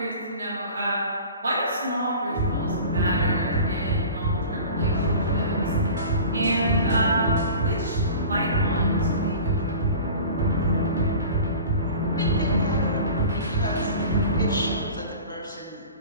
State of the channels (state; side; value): inverted; both; correlation -0.39